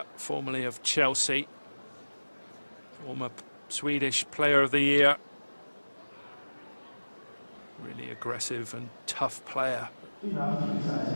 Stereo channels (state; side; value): inverted; both; correlation -1.00